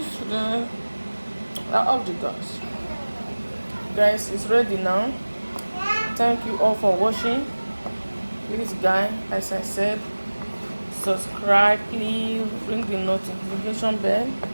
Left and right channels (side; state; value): both; inverted; correlation -1.00